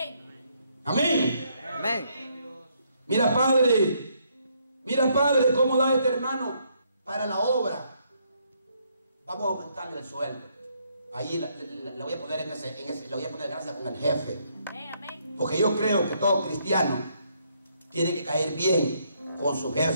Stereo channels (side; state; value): both; inverted; correlation -0.72